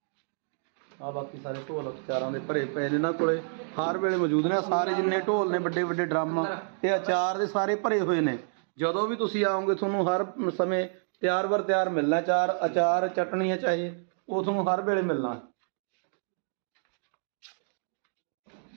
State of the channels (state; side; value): silent; left; digital silence